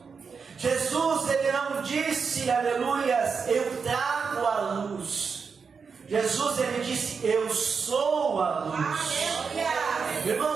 Jesus, ele não disse, aleluias, eu trago a luz. Jesus, ele disse, eu sou a luz.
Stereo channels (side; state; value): left; quieter; 5.6 dB